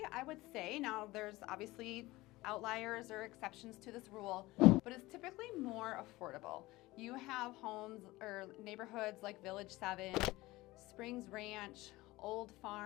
I would say, now there's obviously outliers or exceptions to this rule, but it's typically more affordable. You have homes or neighborhoods like Village 7, Springs Ranch, Old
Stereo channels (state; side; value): quieter; right; 19.4 dB